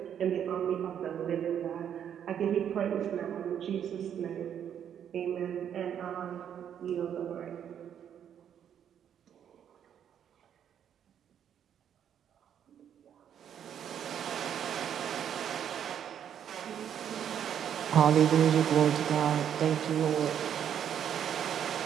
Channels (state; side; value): quieter; left; 9.1 dB